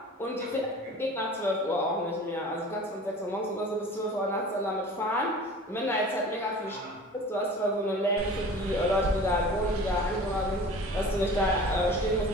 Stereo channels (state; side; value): normal; both; correlation 0.41